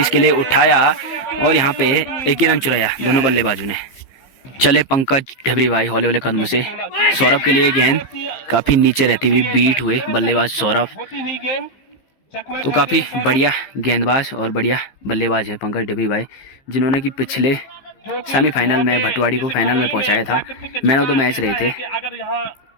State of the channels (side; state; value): right; late; 15 ms